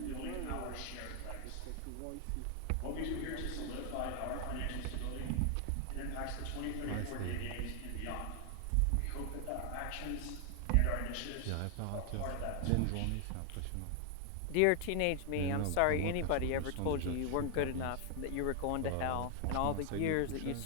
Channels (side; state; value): both; different; correlation 0.00